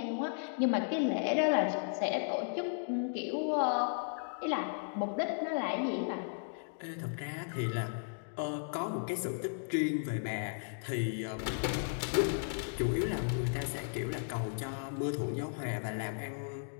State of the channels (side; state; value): right; silent; digital silence